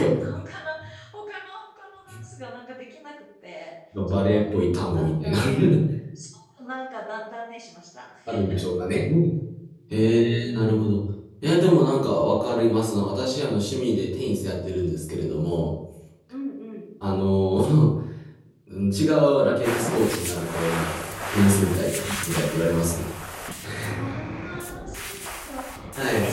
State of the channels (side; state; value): both; identical; correlation 1.00